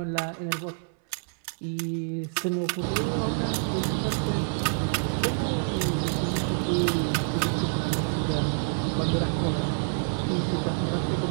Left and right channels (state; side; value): silent; left; 60 dB below the other